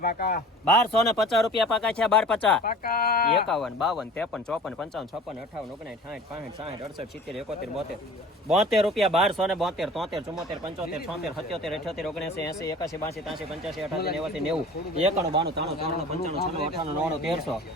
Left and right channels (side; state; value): both; normal; correlation 0.43